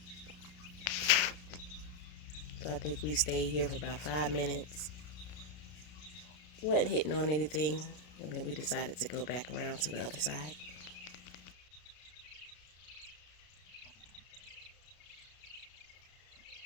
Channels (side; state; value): right; late; 33 ms